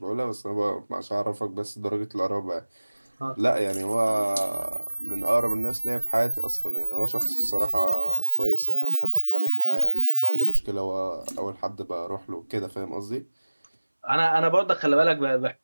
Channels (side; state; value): both; inverted; correlation -1.00